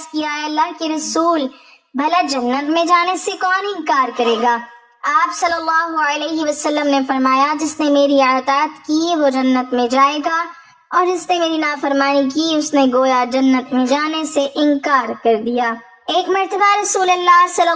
کیا، اے اللہ کے رسول، بھلا جنت میں جانے سے کون انکار کرے گا؟ آپ صلی اللہ علیہ وسلم نے فرمایا، جس نے میری اطاعت کی وہ جنت میں جائے گا، اور جس نے میری نافرمانی کی اس نے گویا جنت میں جانے سے انکار کر دیا۔ ایک مرتبہ رسول اللہ صلی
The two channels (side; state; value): both; identical; correlation 1.00